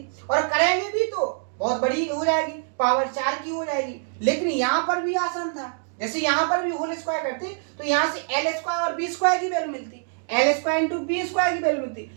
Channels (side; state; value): left; silent; 62 dB below the other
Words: और करेंगे भी तो बहुत बड़ी हो जाएगी, पावर 4 की हो जाएगी। लेकिन यहाँ पर भी आसान था, जैसे यहाँ पर भी होल स्क्वायर करते तो यहाँ से l स्क्वायर और बी स्क्वायर की वैल्यू मिलती, l square into B square की वैल्यू मिलती।